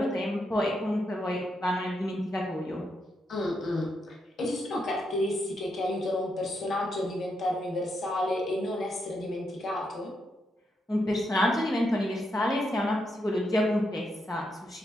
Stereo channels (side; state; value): both; normal; correlation 0.82